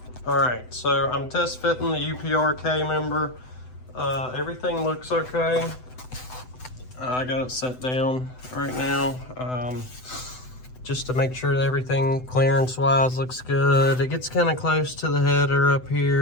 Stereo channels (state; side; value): late; right; 7.9 ms